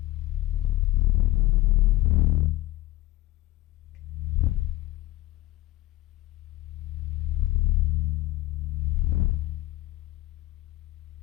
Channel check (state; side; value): quieter; right; 17.1 dB